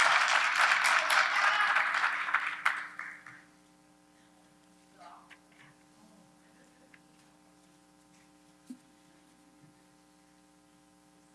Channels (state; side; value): identical; both; correlation 1.00